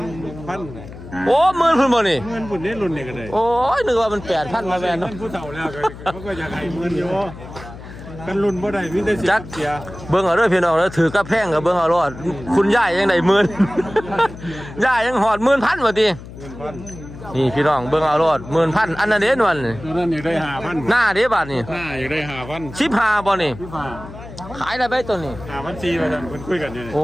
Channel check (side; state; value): left; noise; hum, 14 dB below the sound